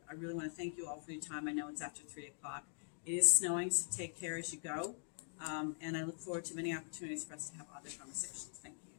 I really want to thank you all for your time. I know it's after 3:00. It is snowing, so take care as you go. And I look forward to many opportunities for us to have other conversations. Thank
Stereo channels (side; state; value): right; silent; digital silence